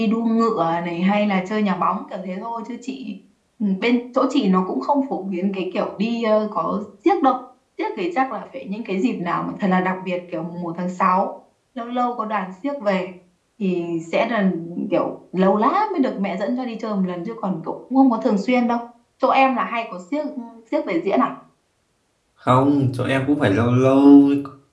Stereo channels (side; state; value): both; identical; correlation 1.00